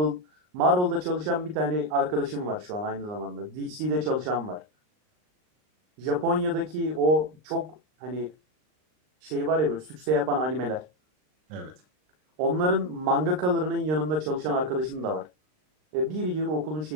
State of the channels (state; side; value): late; left; 39 ms